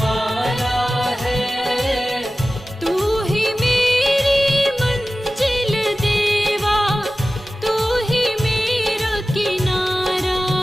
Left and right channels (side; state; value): both; normal; correlation 0.96